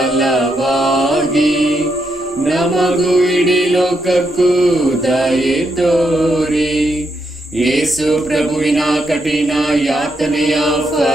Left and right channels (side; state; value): both; normal; correlation 0.80